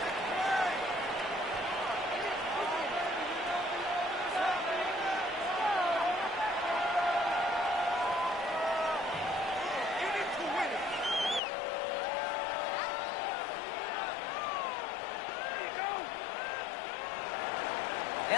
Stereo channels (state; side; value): drops out; right; at 11.4 s